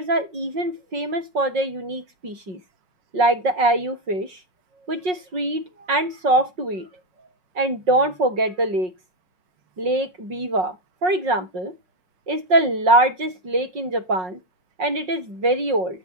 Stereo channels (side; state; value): left; late; 5.5 ms